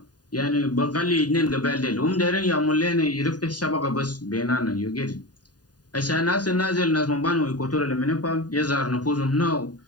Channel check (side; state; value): right; late; 0.69 ms